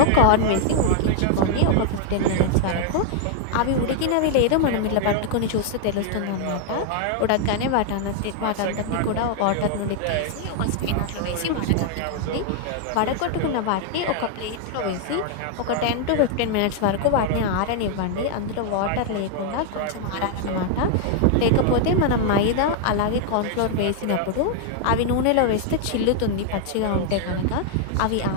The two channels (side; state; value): both; different; correlation 0.00